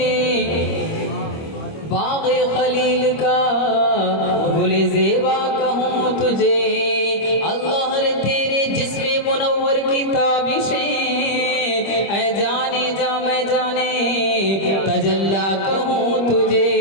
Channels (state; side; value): late; right; 25 ms